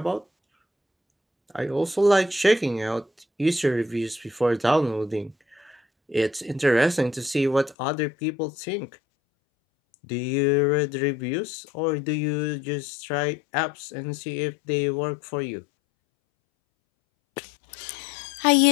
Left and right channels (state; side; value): drops out; right; at 7.8 s